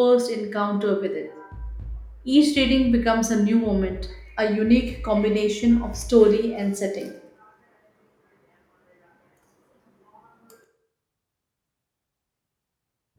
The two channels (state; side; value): identical; both; correlation 1.00